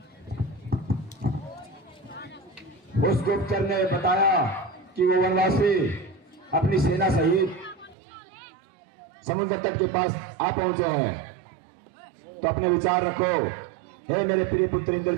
उस गुप्तचर ने बताया कि वो वनवासी अपनी सेना सहित समुद्र तट के पास आ पहुंचे हैं। तो अपने विचार रखो। हे मेरे प्रिय पुत्र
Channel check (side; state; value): left; drops out; at 8.0 s